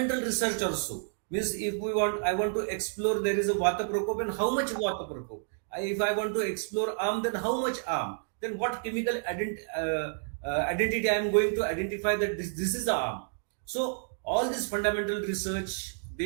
research also. Means if we want, I want to explore, there is a vata prakop, and how much vata prakop. If I want to explore arm, then how much arm? Then what chemical identity I am going to identify that this is the arm. So all this fundamental research,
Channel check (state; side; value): silent; left; digital silence